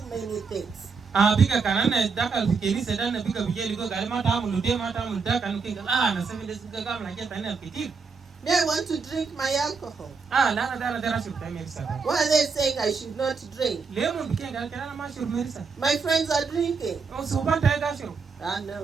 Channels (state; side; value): quieter; left; 5.0 dB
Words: many things. biga kanana dakal fikini sedana biga bijeli go gal mata amulu de mata amulu da kanu kinga na 7 days biga gam na keta ina ketir They want to drink my alcohol. lana dana dara shur ta merisa Why are they saying I should not drink? lemon bikenga kana ma shur merisa My friends are drinking. so banta ga shur